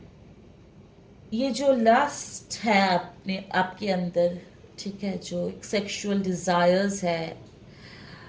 ये जो लस्ट है अपने आपके अंदर, ठीक है, जो एक सेक्सुअल डिजायर्स है,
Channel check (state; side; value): identical; both; correlation 1.00